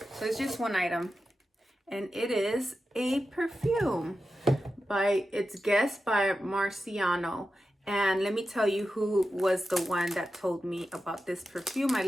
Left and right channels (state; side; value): normal; both; correlation 0.91